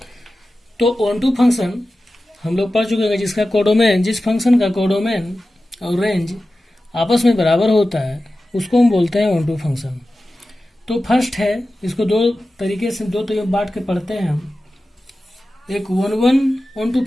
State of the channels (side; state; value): both; normal; correlation 0.94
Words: तो ऑन टू फंक्शन हम लोग पढ़ चुके हैं, जिसका कोडोमेन, जिस फंक्शन का कोडोमेन और रेंज आपस में बराबर होता है उसको हम बोलते हैं ऑन टू फंक्शन। तो फर्स्ट है, इसको दो तरीके से बांट के पढ़ते हैं हम। एक वन ऑन टू